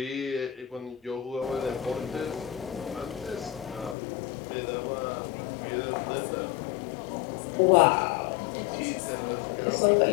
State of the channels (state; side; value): drops out; right; at 4.0 s